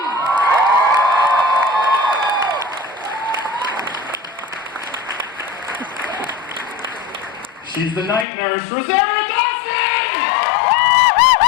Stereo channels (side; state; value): right; drops out; at 8.2 s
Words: She's the night nurse, Rosario Dawson!